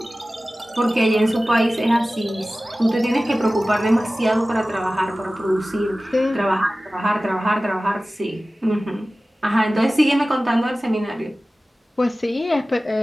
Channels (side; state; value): both; normal; correlation 0.96